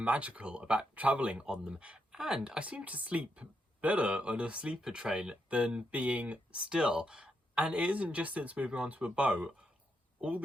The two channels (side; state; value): both; normal; correlation 0.81